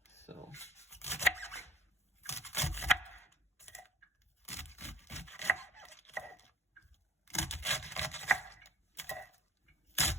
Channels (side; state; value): both; normal; correlation 0.54